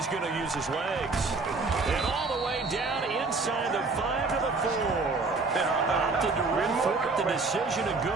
going to use his legs. And all the way down inside the 5 to the 4. Opted to run for it. The decision, a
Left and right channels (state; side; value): quieter; left; 3.9 dB